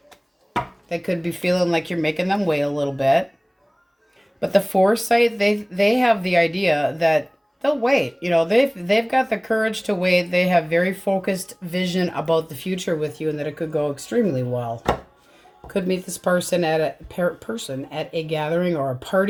They could be feeling like you're making them wait a little bit. But the foresight, they have the idea that they'll wait. You know, they've got the courage to wait. They have very focused vision about the future with you and that it could go extremely well. Could meet this person at a gathering or a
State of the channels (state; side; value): identical; both; correlation 1.00